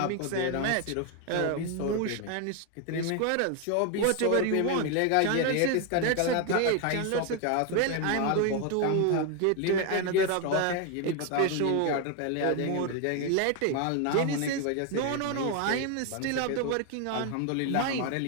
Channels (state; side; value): different; both; correlation 0.01